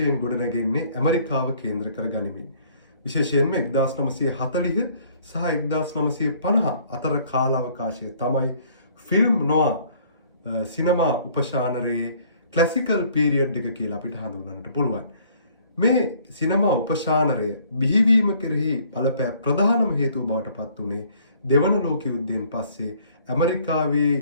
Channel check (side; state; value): both; inverted; correlation -0.59